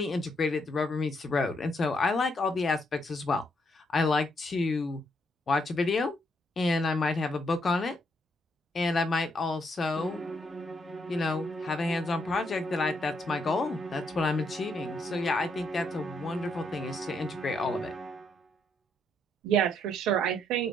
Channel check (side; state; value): both; normal; correlation 0.75